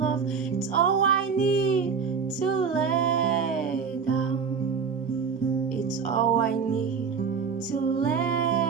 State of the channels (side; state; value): left; quieter; 6.1 dB